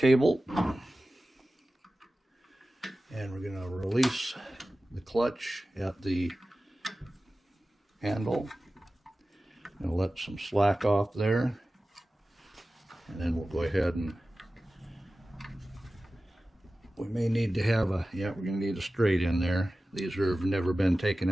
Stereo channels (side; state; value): both; normal; correlation 0.96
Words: And we're going to release the clutch at the handle. And let some slack off there. And then we'll go ahead and we may need to have a, we're going to need a straight in there. These have never been taken